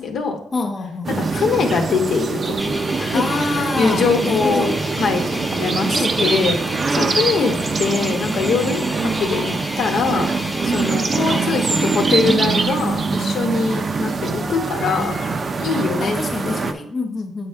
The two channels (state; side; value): normal; both; correlation 0.77